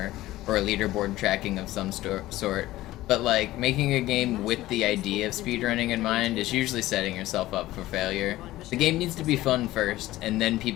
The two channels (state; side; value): quieter; right; 16.4 dB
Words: or a leaderboard tracking of some sort, but like, making a game with the idea of speedrunning in mind is usually setting yourself up for failure. The game needs to be fun first, and then